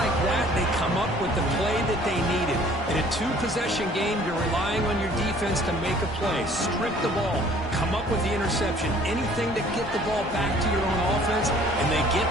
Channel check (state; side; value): noise; left; hum, 23 dB below the sound